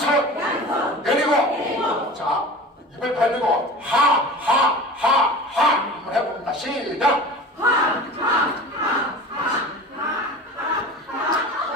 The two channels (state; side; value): normal; both; correlation 0.36